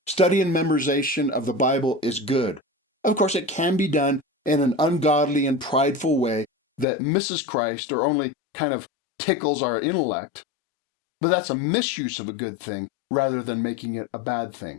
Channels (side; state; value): right; drops out; at 6.9 s